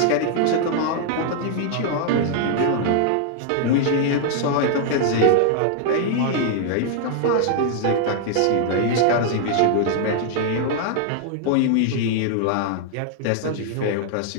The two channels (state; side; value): different; both; correlation -0.01